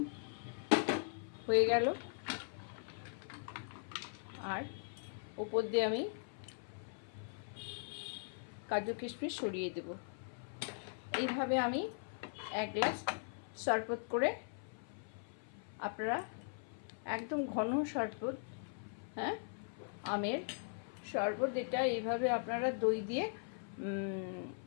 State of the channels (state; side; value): silent; right; 51 dB below the other